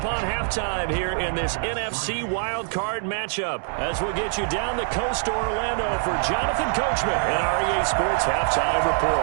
halftime here in this NFC wildcard matchup as we'll get you down the coast to Orlando for Jonathan Coachman in our EA Sports Halftime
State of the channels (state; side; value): silent; left; digital silence